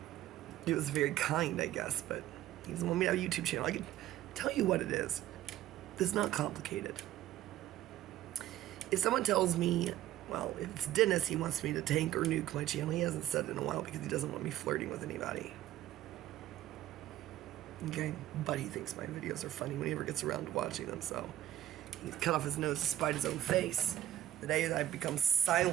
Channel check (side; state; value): left; quieter; 13.3 dB